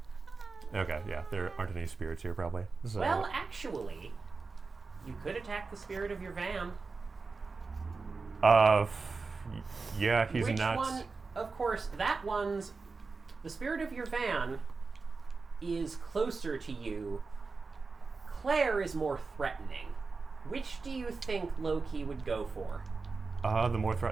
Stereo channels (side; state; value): left; quieter; 4.3 dB